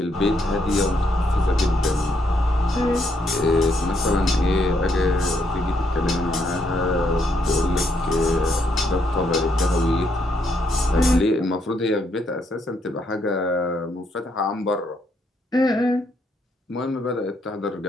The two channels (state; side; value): normal; both; correlation 0.75